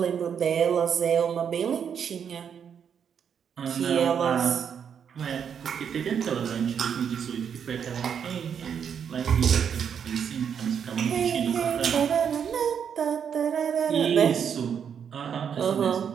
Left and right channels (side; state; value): left; quieter; 7.7 dB